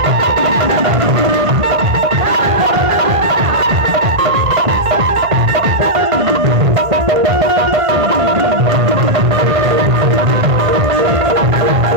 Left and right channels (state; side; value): late; left; 1.8 ms